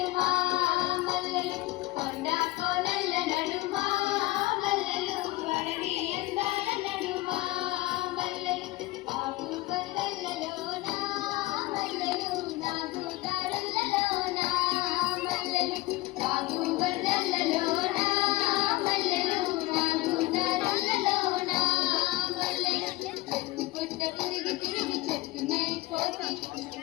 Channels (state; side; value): quieter; right; 19.0 dB